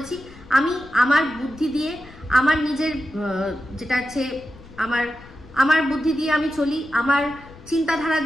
আমি আমার বুদ্ধি দিয়ে, আমার নিজের যেটা আছে আমার বুদ্ধি দিয়ে আমি চলি, আমার চিন্তাধারা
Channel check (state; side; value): noise; left; rumble, 21 dB below the sound